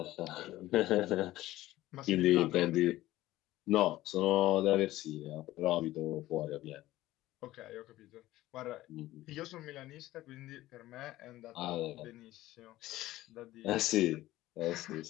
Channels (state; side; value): quieter; right; 16.1 dB